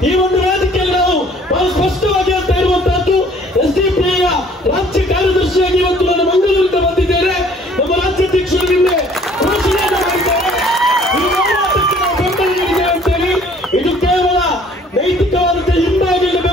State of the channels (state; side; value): normal; both; correlation 0.56